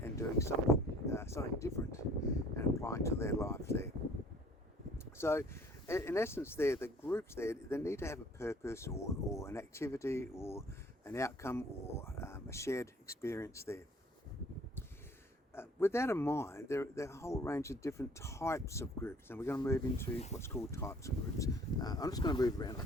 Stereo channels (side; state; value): both; normal; correlation 0.54